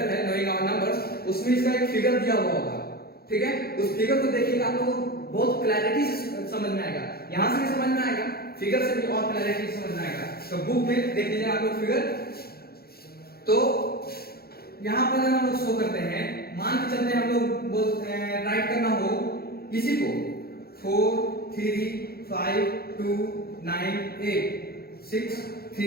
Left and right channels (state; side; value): late; right; 0.45 ms